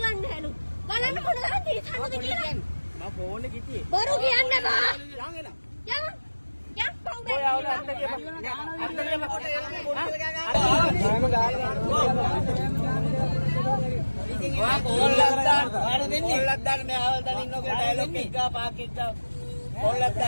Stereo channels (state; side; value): inverted; both; correlation -1.00